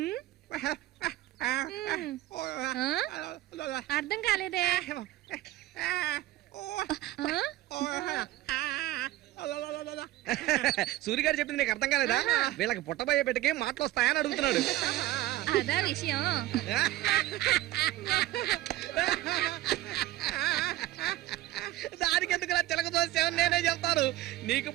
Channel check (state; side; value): quieter; left; 15.8 dB